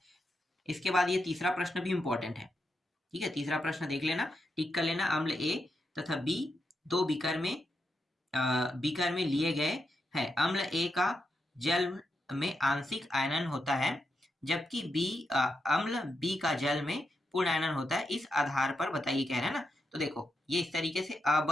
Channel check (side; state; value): both; normal; correlation 0.85